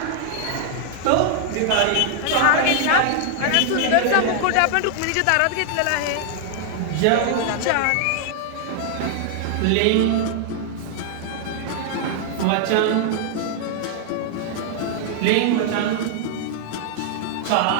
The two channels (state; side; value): different; both; correlation 0.00